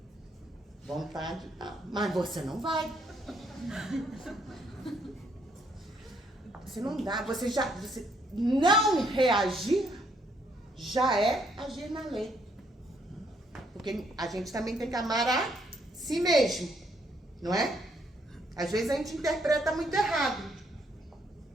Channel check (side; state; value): both; normal; correlation 0.71